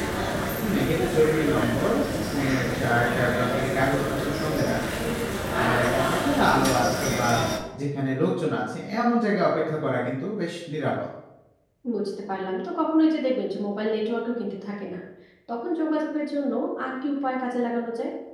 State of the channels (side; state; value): both; identical; correlation 1.00